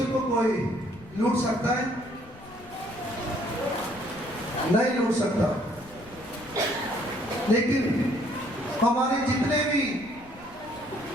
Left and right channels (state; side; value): noise; left; rumble, 21 dB below the sound